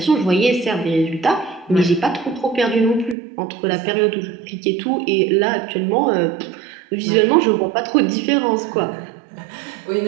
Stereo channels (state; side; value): drops out; left; at 3.2 s